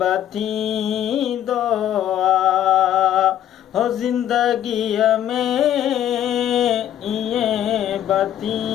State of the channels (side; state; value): right; quieter; 11.0 dB